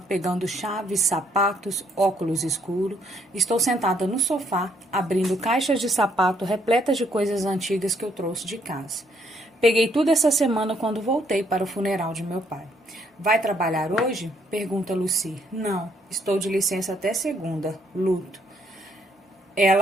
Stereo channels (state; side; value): normal; both; correlation 0.69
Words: pegando chaves, sapatos, óculos escuros. Estou sentada no sofá, abrindo caixas de sapato repletas de coisas antigas que eu trouxe de casa. Peguei tudo essa semana quando voltei para o funeral de meu pai. Vai trabalhar hoje? Pergunta Lucy. Não, estou de licença até segunda. Luto.